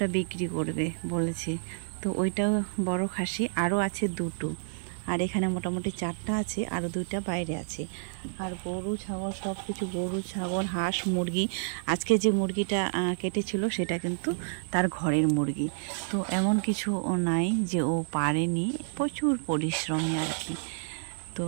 বিক্রি করবে বলেছে। তো ওইটাও বড় খাসি, আরও আছে 2টো, আর এখানে মোটামুটি 4টা আছে, আরও 2টা বাইরে আছে। আর গরু ছাগল সব কিছু, গরু ছাগল হাঁস মুরগি, আজকে যে মুরগিটা কেটেছিল সেটা কিন্তু তার ঘরের মুরগি। তো এমন কিছু ও নাই যে ও পারেনি, প্রচুর পরিশ্রমী আর কি। তো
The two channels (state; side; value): silent; left; digital silence